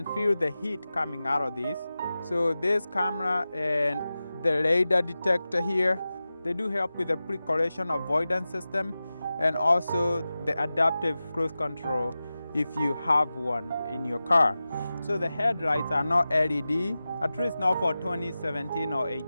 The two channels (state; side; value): inverted; both; correlation -0.95